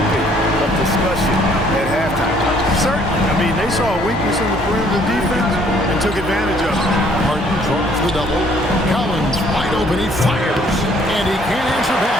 of discussion at halftime. Certainly. I mean, they saw a weakness in the perimeter defense and took advantage of it. Harden draws the double. Collins wide open. He fires. And he can't answer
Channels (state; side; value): normal; both; correlation 0.62